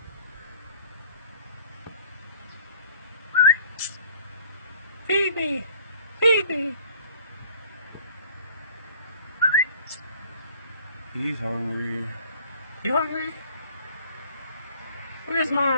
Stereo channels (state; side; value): inverted; both; correlation -0.52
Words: Feed me. Feed me. He's hungry. You hungry? Where's